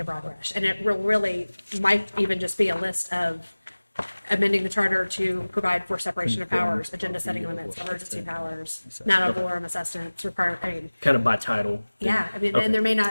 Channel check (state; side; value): inverted; both; correlation -1.00